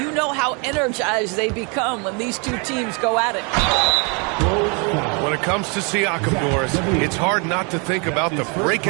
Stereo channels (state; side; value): quieter; left; 33.7 dB